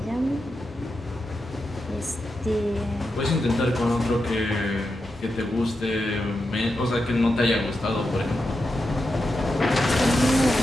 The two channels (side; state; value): both; normal; correlation 0.88